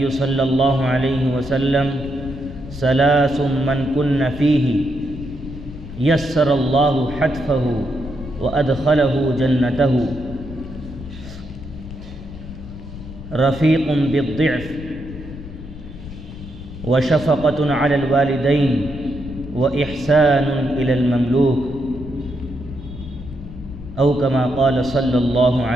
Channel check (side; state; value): left; noise; rumble, 12 dB below the sound